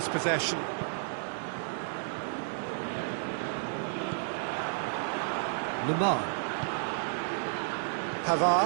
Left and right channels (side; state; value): left; silent; digital silence